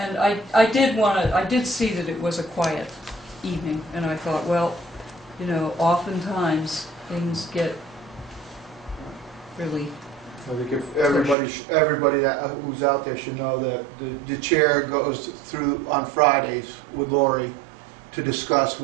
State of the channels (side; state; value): left; drops out; at 11.4 s